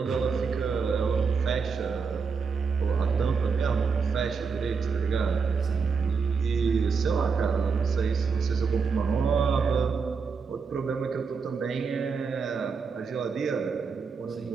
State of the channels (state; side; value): quieter; left; 5.4 dB